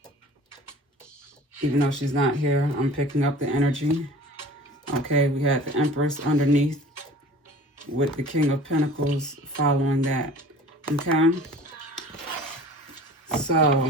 Even though she's not here, I'm picking up the energy. Okay, we had the Empress underneath with the King of Pentacles following that, okay?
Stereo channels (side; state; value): both; normal; correlation 0.44